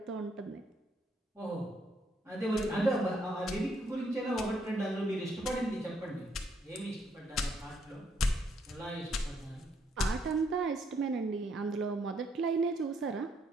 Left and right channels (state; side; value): normal; both; correlation 0.72